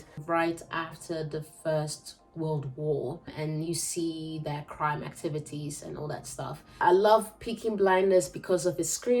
right after the First World War, and you see their crime activities and all that stuff. I love Peaky Blinders because of its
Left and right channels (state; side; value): identical; both; correlation 1.00